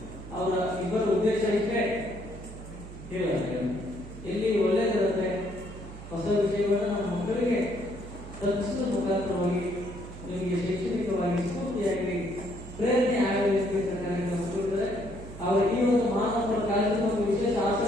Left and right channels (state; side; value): noise; right; hum, 13 dB below the sound